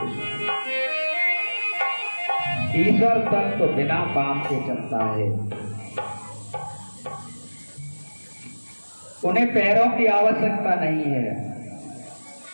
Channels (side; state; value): both; inverted; correlation -1.00